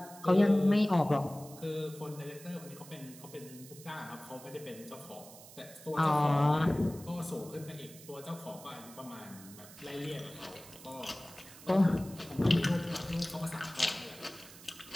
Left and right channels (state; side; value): noise; right; hiss, 18 dB below the sound